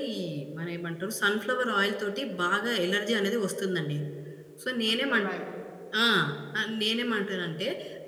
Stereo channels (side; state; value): both; identical; correlation 1.00